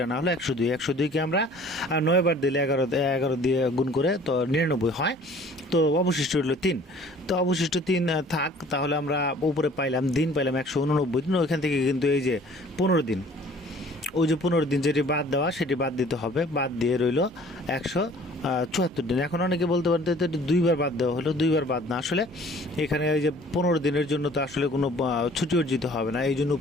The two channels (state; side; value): normal; both; correlation 0.52